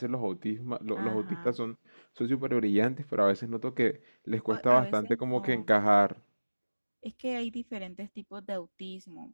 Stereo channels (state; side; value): inverted; both; correlation -1.00